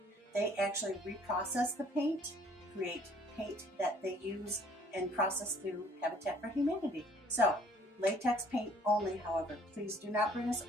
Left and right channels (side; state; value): both; normal; correlation 0.59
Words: They actually reprocess the paint, create paint that they use and process through Habitat for Humanity. So, latex paint only, however. Please do not bring us